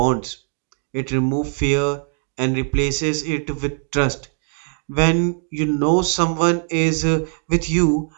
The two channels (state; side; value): silent; left; 58 dB below the other